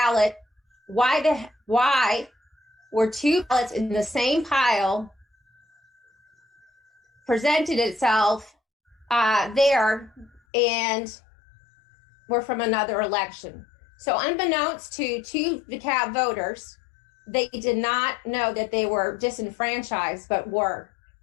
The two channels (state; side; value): drops out; right; at 10.4 s